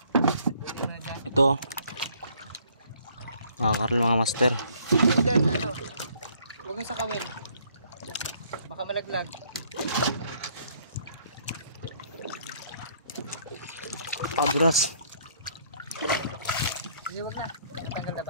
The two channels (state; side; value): inverted; both; correlation -0.63